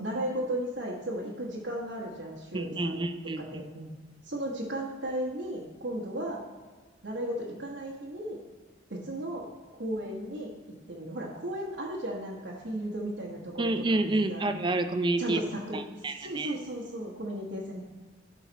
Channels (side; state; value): both; normal; correlation 0.48